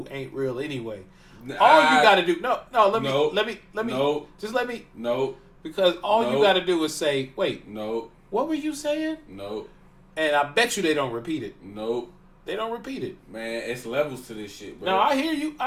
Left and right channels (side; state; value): both; identical; correlation 1.00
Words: ain't real anyway. All you gotta do let me because all you gotta do is say, wait, what were you saying? And I bet you they don't repeat it. They don't repeat it. Man, it's levels to this shit, bro. No, I hear you.